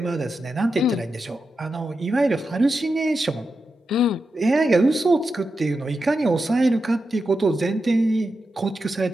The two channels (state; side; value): normal; both; correlation 0.89